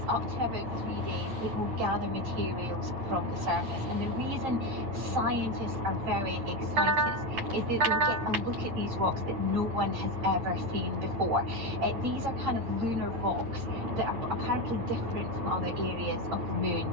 up to about 3 days, it will gather materials from the surface. And the reason scientists are very excited is that they'll get a look at these rocks that no one has ever seen before. These are kind of lunar rocks that are apparently different from other areas of the moon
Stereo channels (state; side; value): late; left; 9.3 ms